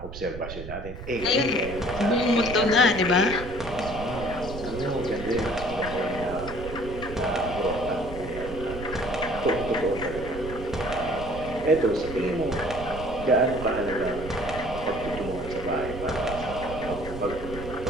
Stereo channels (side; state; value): right; noise; rumble, 10 dB below the sound